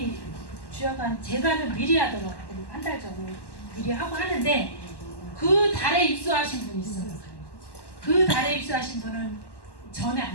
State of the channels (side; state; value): right; late; 1.1 ms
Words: 주약한 제가는 미리 하더라고요. 한 달 전에 미리 하고 하는데, 그 달에 입수하신 분이 있어요. 그 달에 입수하신 분은 전에